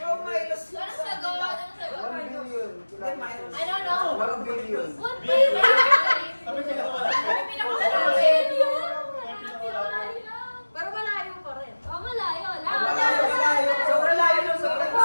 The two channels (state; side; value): inverted; both; correlation -1.00